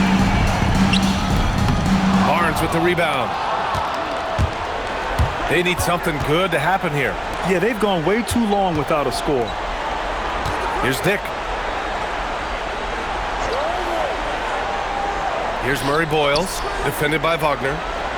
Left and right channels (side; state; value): both; identical; correlation 1.00